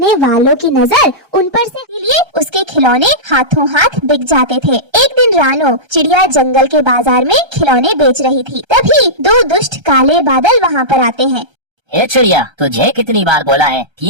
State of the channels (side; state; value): left; late; 1.3 ms